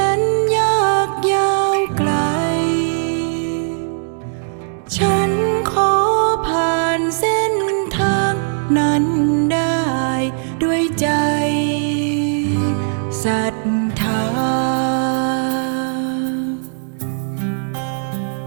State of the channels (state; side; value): silent; left; digital silence